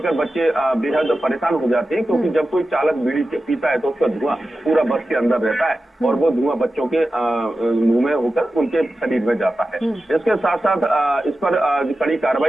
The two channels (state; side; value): normal; both; correlation 0.93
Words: बच्चे बेहद परेशान हो जाते हैं, क्योंकि जब कोई चालक बीड़ी पीता है तो उसका धुआं पूरा बस के अंदर रहता है और वो धुआं बच्चों के मुंह में होकर उनके शरीर में जाता है। इसके साथ साथ इस पर कड़ी